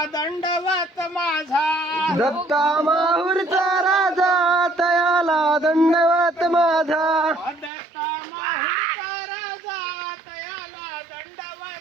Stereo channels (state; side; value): drops out; left; at 7.7 s